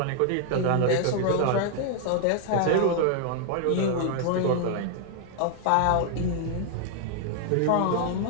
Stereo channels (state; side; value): different; both; correlation 0.00